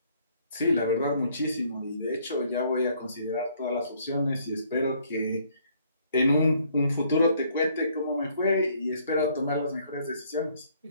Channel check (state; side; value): inverted; both; correlation -0.65